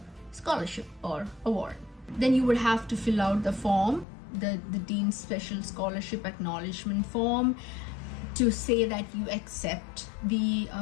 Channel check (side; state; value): right; drops out; at 4.0 s